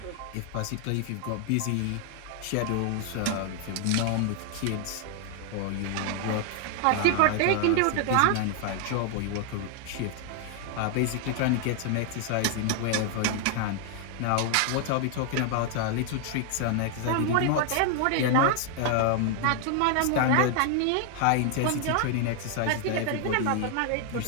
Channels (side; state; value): both; different; correlation 0.00